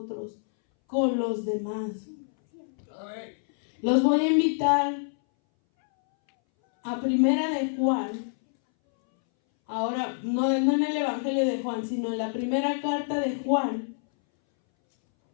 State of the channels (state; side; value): silent; right; 60 dB below the other